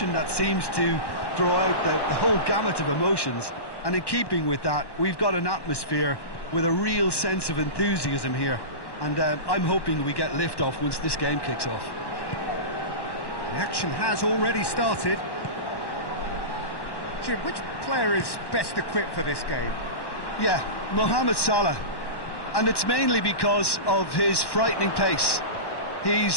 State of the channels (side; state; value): right; late; 1.1 ms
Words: that seems to draw out the whole gamut of emotions. And in keeping with that, we've got an atmosphere with a real sense of enthusiasm here. And I'm hoping we get lift-off once this game kicks off. The action has already started. Jim, which player is best equipped for this game? Yeah, Mohamed Salah. And it's mainly because of his frightening pace.